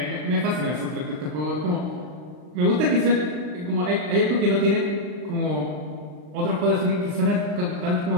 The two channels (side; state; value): left; late; 39 ms